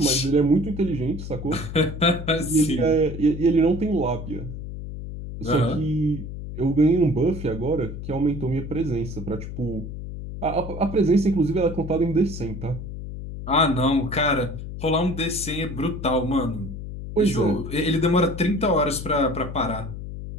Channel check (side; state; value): left; noise; hum, 9 dB below the sound